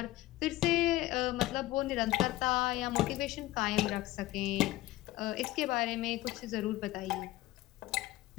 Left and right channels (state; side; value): quieter; right; 16.9 dB